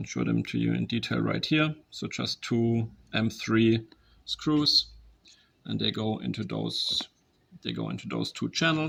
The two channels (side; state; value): both; identical; correlation 1.00